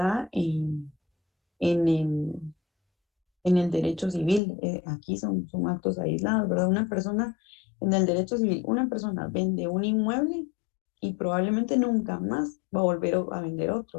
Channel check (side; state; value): right; drops out; at 4.4 s